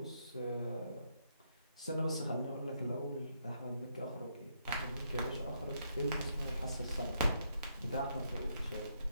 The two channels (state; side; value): inverted; both; correlation -0.77